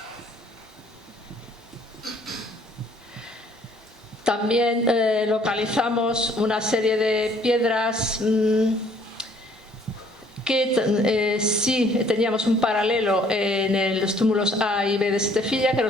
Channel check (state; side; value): normal; both; correlation 0.60